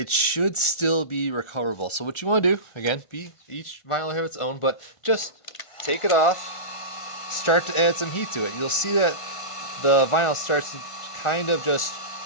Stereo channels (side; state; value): right; late; 1.5 ms